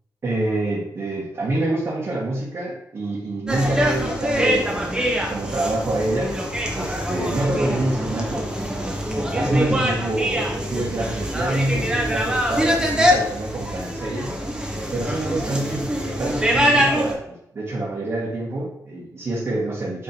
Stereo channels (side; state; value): both; normal; correlation 0.77